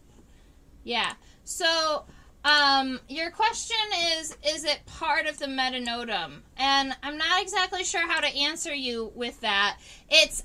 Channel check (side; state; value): both; identical; correlation 1.00